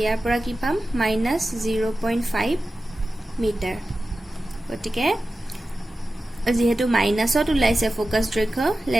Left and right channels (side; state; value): both; normal; correlation 0.94